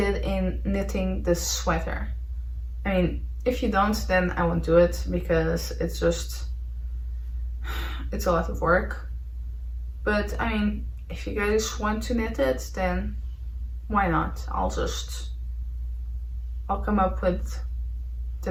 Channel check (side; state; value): both; identical; correlation 1.00